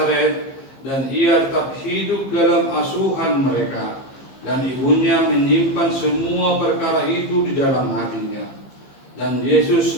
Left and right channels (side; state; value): right; late; 15 ms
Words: dan ia tetap hidup dalam asuhan mereka. Dan ibunya menyimpan semua perkara itu di dalam hatinya. Dan